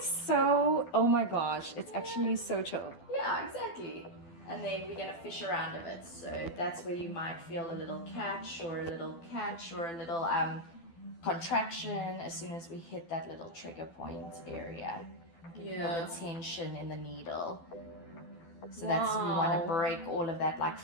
so, oh my gosh, it's actually so chill. Yeah, exactly. And then we're going to fish around a bit. So that's where you might feel a little catch or a little contraction as soon as we hit that little trigger point area. Feel the tension in the needle. So that's, we want to break all of that like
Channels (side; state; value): right; late; 12 ms